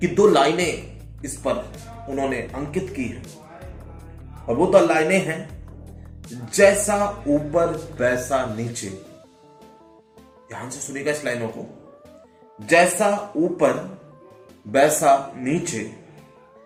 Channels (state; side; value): identical; both; correlation 1.00